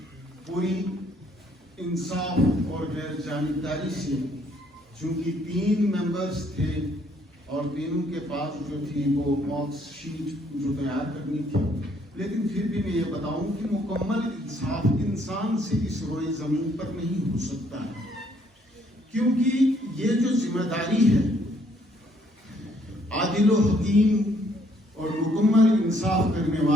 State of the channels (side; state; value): both; normal; correlation 0.67